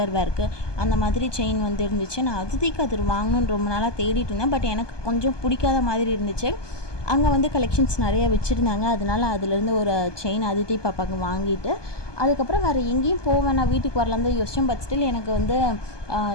வேர்க்கு அந்த மாதிரி செயின் இருந்துச்சு. நான் அதிதிக்கு அது வாங்கணுன்னு ரொம்ப நாளாக தேடிட்டு இருந்தேன். பட் எனக்கு கொஞ்சம் பிடிக்காத மாதிரி இருந்துச்சு. அங்கே கலெக்ஷன்ஸ் நிறைய வச்சுருந்தாங்க. அதனால அதுலேருந்து ஒரு செயின் அதிதி பாப்பாவுக்கு வாங்கிட்டு அதுக்கப்புறம் வேறு எங்கேயும் போவேன், நான் வீட்டுக்கு வரலாம் தான் யோசித்தேன். பட் ஸ்டில் எனக்கு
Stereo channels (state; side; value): late; right; 1.2 ms